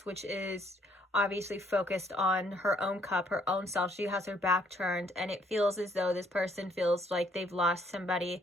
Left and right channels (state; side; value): normal; both; correlation 0.66